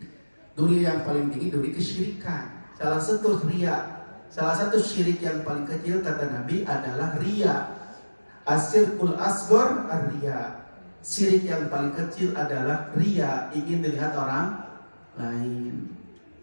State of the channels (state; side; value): inverted; both; correlation -1.00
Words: Duri yang paling tinggi, duri kesyirikan. Salah satu riya, salah satu syirik yang paling kecil kata Nabi adalah riya. Asyirkul asghar ar-riya. Syirik yang paling kecil adalah riya, ingin dilihat orang lain.